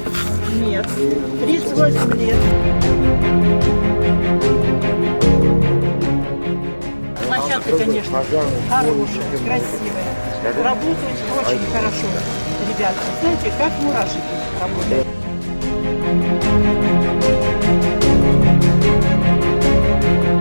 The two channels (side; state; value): both; inverted; correlation -1.00